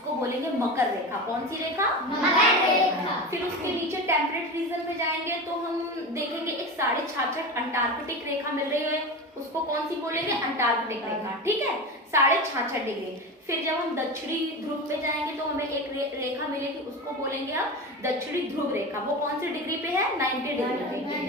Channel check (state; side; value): normal; both; correlation 0.25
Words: बोलेंगे मकर रेखा। कौन सी रेखा? मकर रेखा। फिर उसके नीचे टेम्परेट रीजन पे जाएंगे तो हम देखेंगे एक 66.5 अंटार्कटिक रेखा मिल रही है, उसको कौन सी बोलेंगे? अंटार्कटिक रेखा। ठीक है, 66.5 डिग्री। फिर जब हम दक्षिणी ध्रुव पे जाएंगे तो हमें एक रेखा मिलेगी, उसको बोलेंगे अब दक्षिणी ध्रुव रेखा। वो कौन सी डिग्री पे है? 90 डिग्री पे।